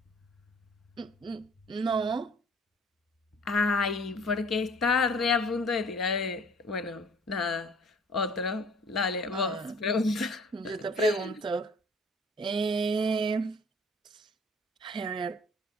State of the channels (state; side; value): normal; both; correlation 0.52